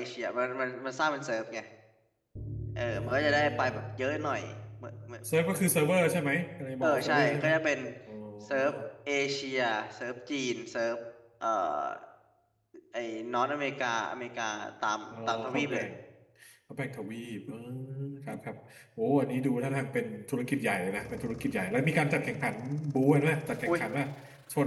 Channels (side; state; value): both; identical; correlation 1.00